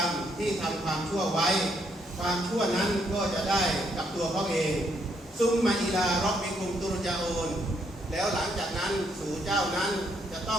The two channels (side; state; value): both; normal; correlation 0.73